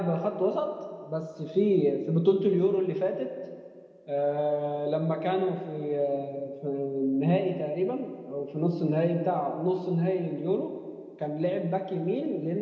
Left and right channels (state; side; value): identical; both; correlation 1.00